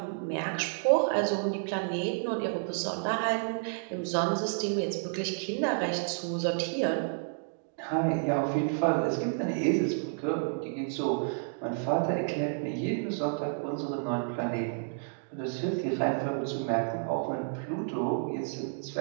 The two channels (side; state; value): left; silent; digital silence